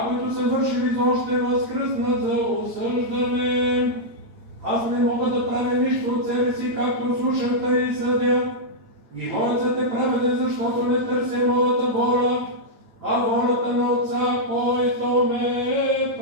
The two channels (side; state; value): left; late; 8.9 ms